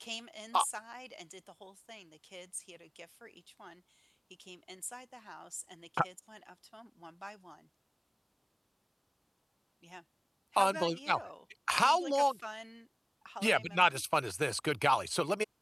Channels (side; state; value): both; identical; correlation 1.00